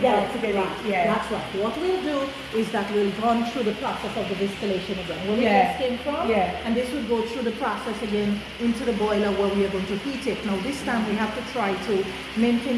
it. it. Right. Yeah. That's right. What we'll do is that we'll run through the process of the distillation again. Where Yeah. this came from. Yeah. And this will go through the process again into the boiler where we are going to heat it. Now this time we have to try to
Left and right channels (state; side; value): identical; both; correlation 1.00